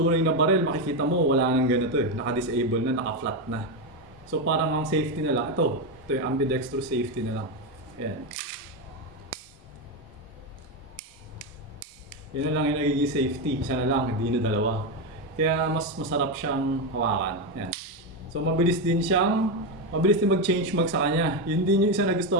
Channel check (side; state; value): both; normal; correlation 0.10